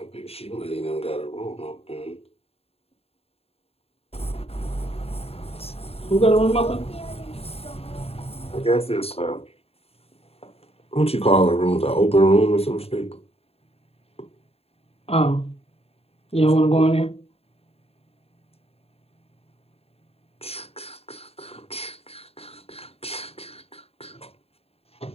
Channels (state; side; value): late; right; 0.29 ms